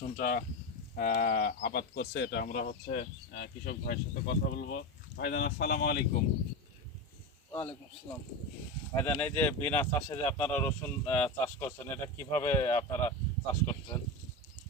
আবাদ করছে, এটা আমরা কৃষক ভাইয়ের সাথে কথা বলবো। ভাইজান আসসালামু আলাইকুম। ওয়ালাইকুম আসসালাম। ভাইজান, এই যে বিনা চাষে যে আপনারা রসুন চাষ করছেন, এটা কিভাবে আপনারা চাষ করছেন?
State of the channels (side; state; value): both; normal; correlation 0.19